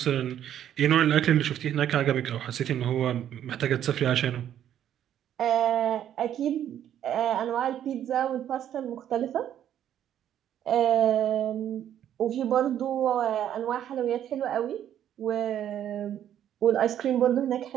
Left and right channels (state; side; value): quieter; left; 10.5 dB